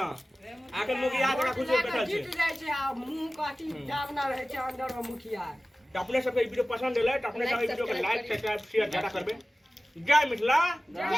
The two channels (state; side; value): normal; both; correlation 0.97